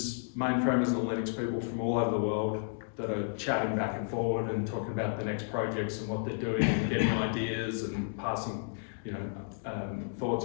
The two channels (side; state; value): right; silent; digital silence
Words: mainframers and Linux people from all over the world that are chatting back and forward and talking about the next projects and what they're doing and getting ideas and passing,